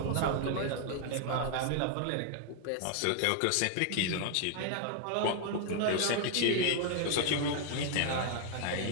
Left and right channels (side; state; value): both; different; correlation 0.00